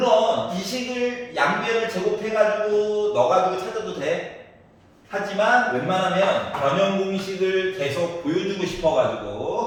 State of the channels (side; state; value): both; identical; correlation 1.00